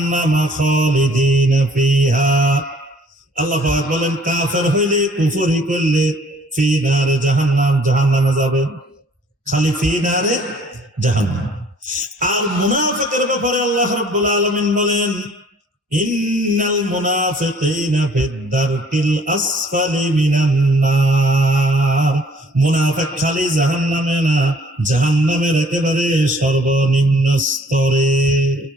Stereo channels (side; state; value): both; normal; correlation 0.57